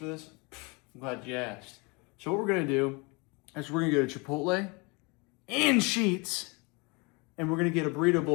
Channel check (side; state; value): right; quieter; 29.1 dB